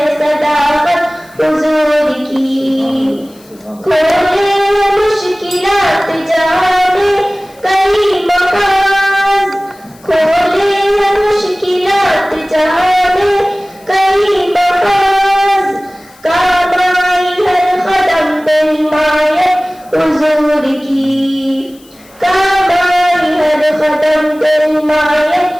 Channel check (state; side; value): noise; left; hiss, 27 dB below the sound